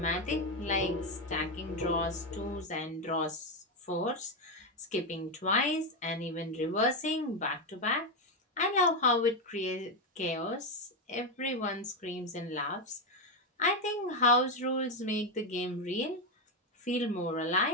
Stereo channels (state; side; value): normal; both; correlation 0.08